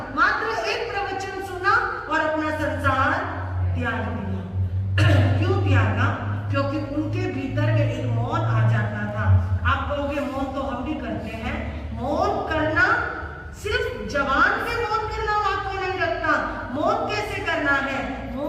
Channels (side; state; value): both; identical; correlation 1.00